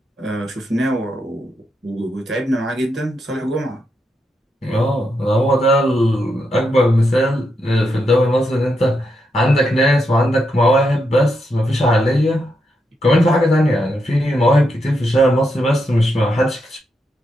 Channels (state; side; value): normal; both; correlation 0.82